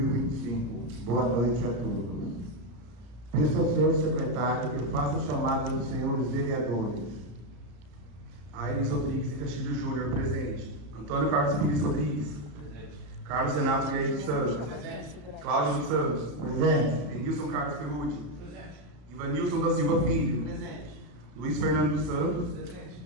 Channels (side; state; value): left; late; 34 ms